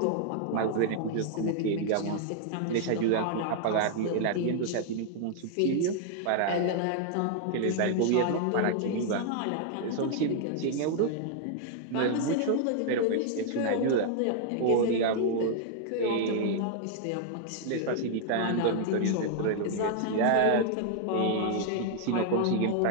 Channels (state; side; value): different; both; correlation 0.00